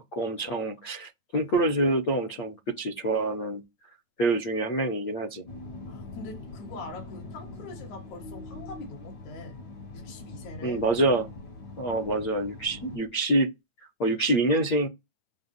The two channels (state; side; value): late; right; 8.6 ms